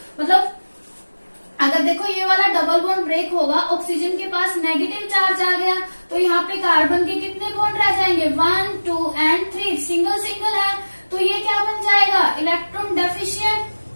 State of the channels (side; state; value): both; inverted; correlation -1.00